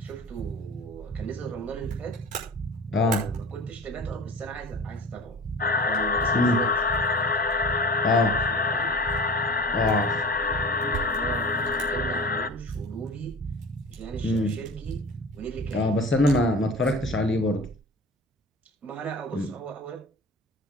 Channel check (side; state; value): both; normal; correlation 0.37